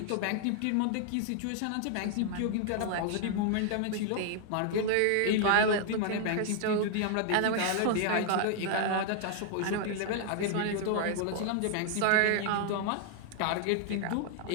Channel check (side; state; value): both; different; correlation 0.00